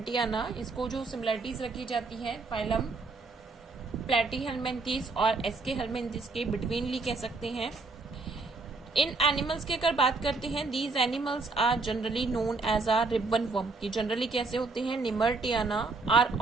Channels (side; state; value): left; quieter; 3.8 dB